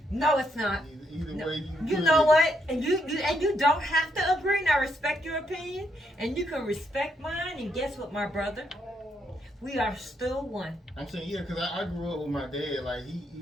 No, it's not. Either No. way You know what? And you don't have to agree. And I respect your opinion, and you can respect mine. And guess what, my brother? We are still one. I'm saying, yeah, because I grew up with my dad. Like,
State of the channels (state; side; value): normal; both; correlation 0.77